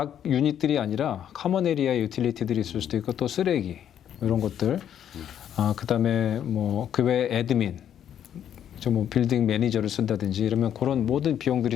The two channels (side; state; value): right; quieter; 9.8 dB